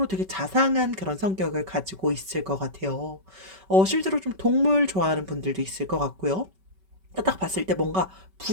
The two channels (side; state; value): left; late; 5.2 ms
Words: 되게 자상한 그런 성격을 가지고 있을 것 같아요. 실제로 좀 동물 좋아하는 분들도 있을 것 같고요. 딱 봤을 때 뭔가